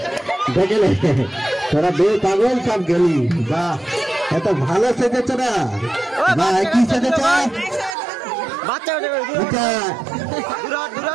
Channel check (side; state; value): left; drops out; at 8.0 s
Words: দেখলে তোরা দুই পাগল সব গেলি। বাহ এত ভালো সেজেছ না। বাহ কি সেজেছ?